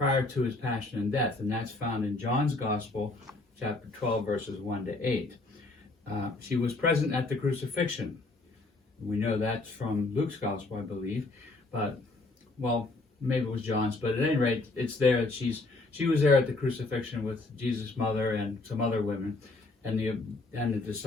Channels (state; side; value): quieter; right; 3.2 dB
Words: to his passion and death. And that's found in John's Gospel, chapter 12, verses 1 to 8. She was present at the crucifixion. We know that's from Luke's Gospel, I believe. But, well, maybe it was John's. But at any rate, it's there that she was there at the crucifixion with Jesus' mother and some other women and the